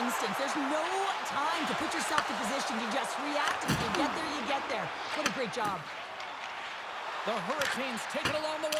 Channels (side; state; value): both; identical; correlation 1.00